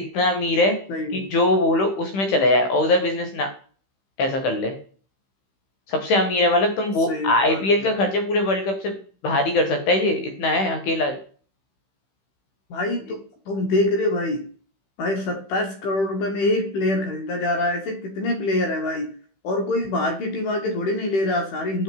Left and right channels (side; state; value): right; late; 15 ms